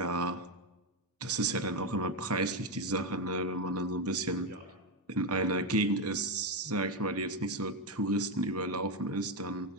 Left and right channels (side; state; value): both; normal; correlation 0.09